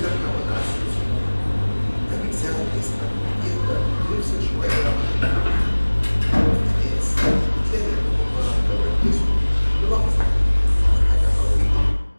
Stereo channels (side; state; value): both; inverted; correlation -1.00